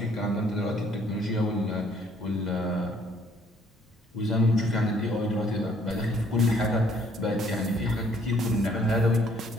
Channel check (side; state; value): both; normal; correlation 0.63